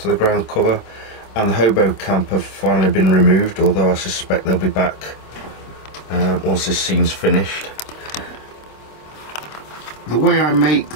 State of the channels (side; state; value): right; late; 26 ms